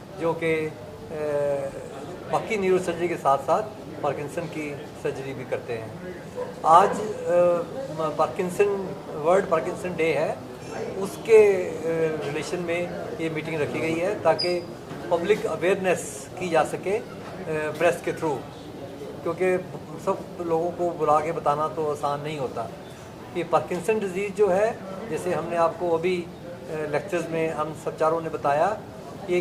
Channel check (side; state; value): both; identical; correlation 1.00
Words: जो कि बाकी न्यूरो सर्जरी के साथ साथ पार्किंसन की सर्जरी भी करते हैं। आज पार्किंसन वर्ल्ड पार्किंसन डे है, उसके रिलेशन में ये मीटिंग रखी गई है ताकि पब्लिक अवेयरनेस की जा सके प्रेस के थ्रू, क्योंकि सब लोगों को बुला के बताना तो आसान नहीं होता कि पार्किंसन डिजीज़ जो है, जैसे हमने आपको अभी लेक्चर्स में हम सब चारों ने बताया, ये